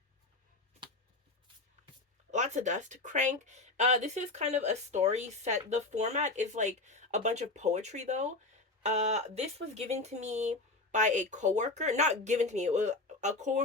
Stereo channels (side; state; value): right; quieter; 3.2 dB